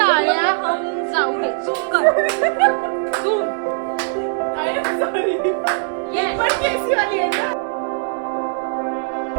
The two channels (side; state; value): left; silent; digital silence